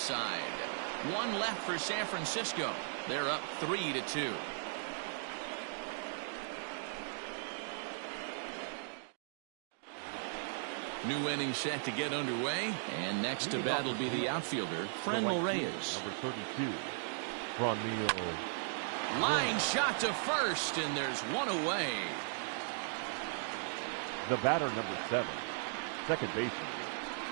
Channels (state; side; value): silent; left; digital silence